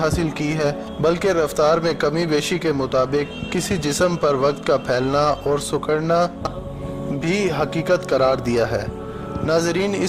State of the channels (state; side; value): identical; both; correlation 1.00